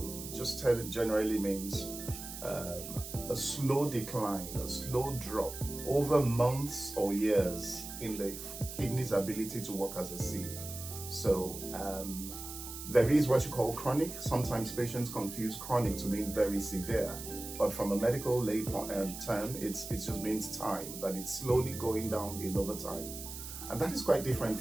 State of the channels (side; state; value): right; noise; hiss, 10 dB below the sound